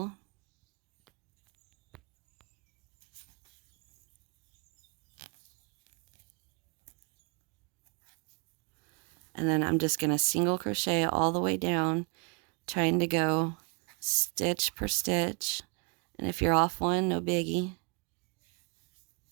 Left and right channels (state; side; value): quieter; left; 33.9 dB